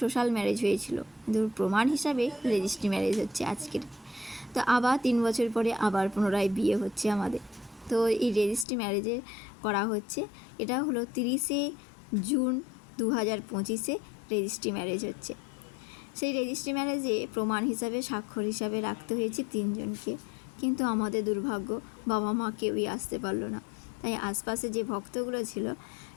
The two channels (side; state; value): right; drops out; at 8.7 s